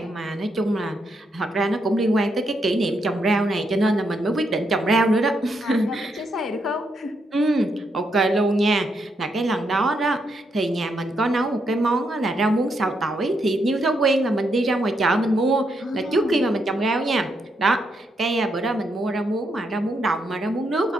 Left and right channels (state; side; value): normal; both; correlation 0.79